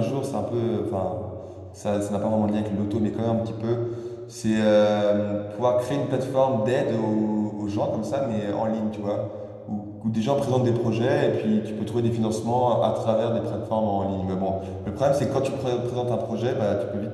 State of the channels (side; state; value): both; identical; correlation 1.00